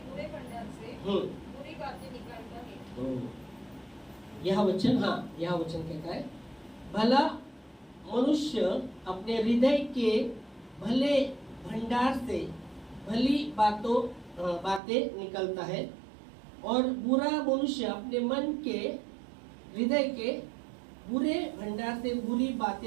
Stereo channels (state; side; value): drops out; left; at 14.8 s